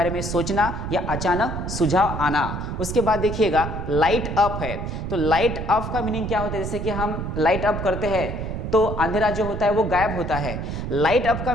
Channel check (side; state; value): right; noise; rumble, 5 dB below the sound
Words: में सोचना या अचानक सुझाव आना। उसके बाद देखिएगा लाइट अप है, तो लाइट अप का मीनिंग क्या होता है, जैसे कि हम लाइट अप करते हैं तो अंधेरा जो होता है वो गायब होता है। लाइट अप का